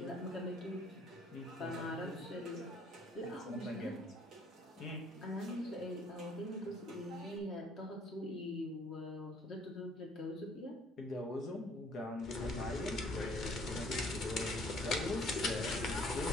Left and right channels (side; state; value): both; normal; correlation 0.59